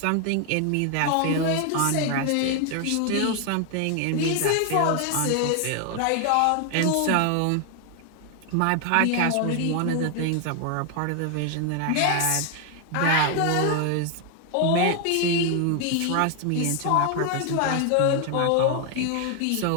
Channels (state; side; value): different; both; correlation 0.00